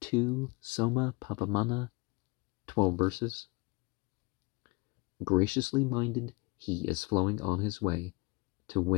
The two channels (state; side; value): quieter; right; 27.0 dB